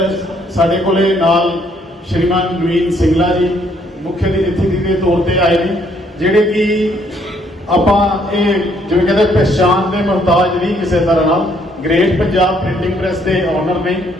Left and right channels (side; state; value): both; normal; correlation 0.68